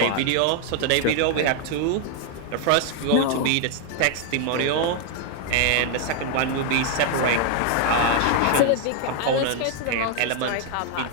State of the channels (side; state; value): both; different; correlation 0.00